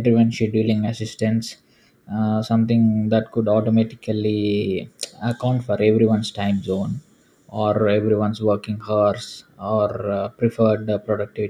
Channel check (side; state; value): both; identical; correlation 1.00